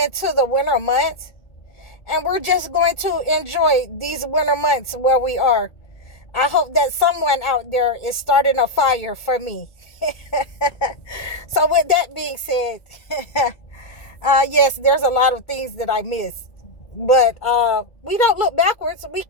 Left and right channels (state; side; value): late; right; 2.3 ms